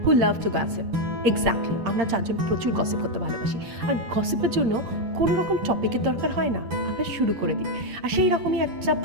who love to gossip. Exactly, আমরা চারজন প্রচুর gossip করতে ভালোবাসি, আর গসিপের জন্য কোনো রকম টপিকের দরকার হয় না, আমরা শুরু করে দিই। আর সেই রকমই একটা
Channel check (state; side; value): late; left; 8.7 ms